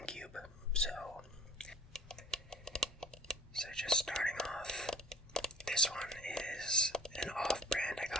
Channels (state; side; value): normal; both; correlation 0.50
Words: So just starting off, this one is an off-brand I